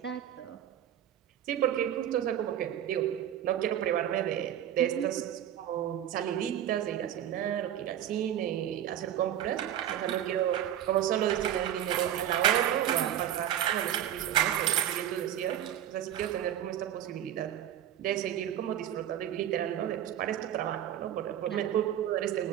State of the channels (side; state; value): left; quieter; 10.9 dB